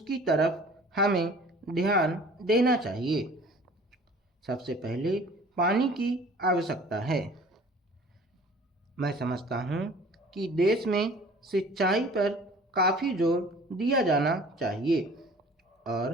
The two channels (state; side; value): normal; both; correlation 0.48